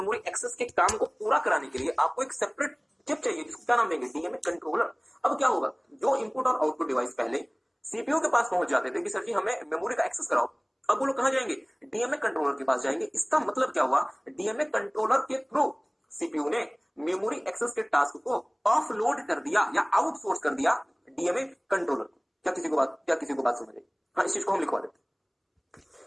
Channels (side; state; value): both; identical; correlation 1.00